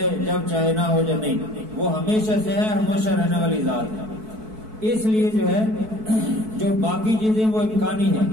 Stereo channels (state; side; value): late; left; 4.6 ms